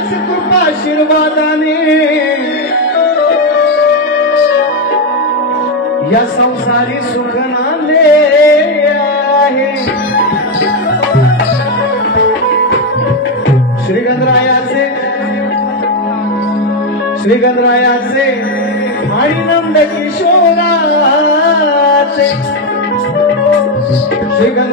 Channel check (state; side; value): normal; both; correlation 0.06